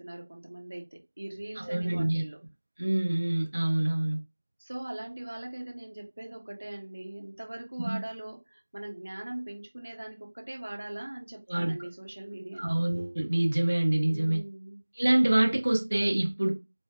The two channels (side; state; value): both; inverted; correlation -1.00